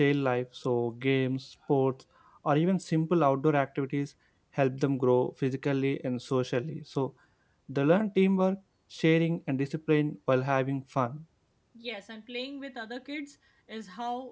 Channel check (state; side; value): identical; both; correlation 1.00